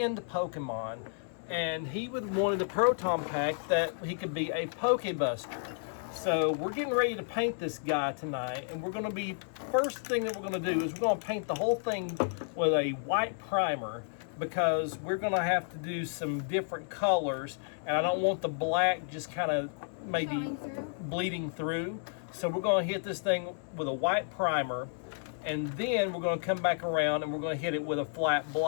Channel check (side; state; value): right; silent; 57 dB below the other